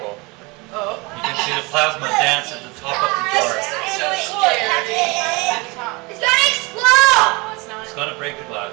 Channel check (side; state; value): left; quieter; 26.2 dB